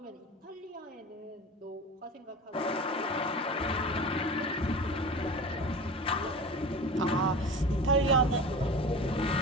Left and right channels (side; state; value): both; normal; correlation 0.34